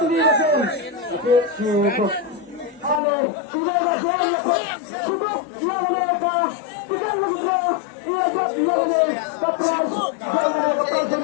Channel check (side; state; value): right; drops out; at 3.0 s